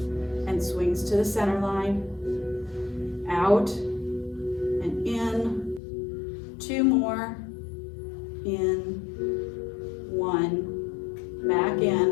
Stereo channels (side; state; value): right; drops out; at 5.8 s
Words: and swings to the center line, out and in, 2 more, in, 1, back